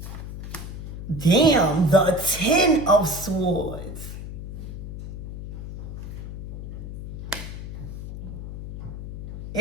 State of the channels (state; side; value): noise; left; hum, 8 dB below the sound